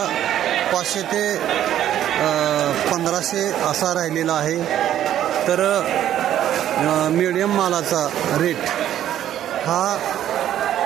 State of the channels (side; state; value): left; quieter; 11.4 dB